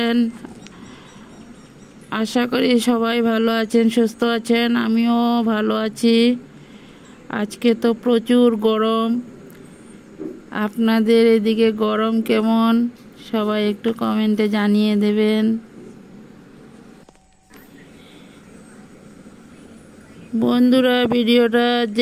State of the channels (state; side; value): identical; both; correlation 1.00